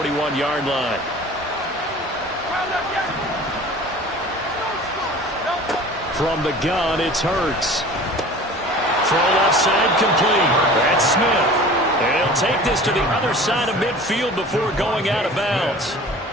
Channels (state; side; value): normal; both; correlation 0.42